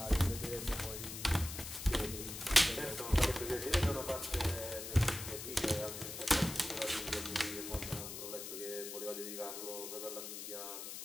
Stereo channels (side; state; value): left; noise; hiss, 8 dB below the sound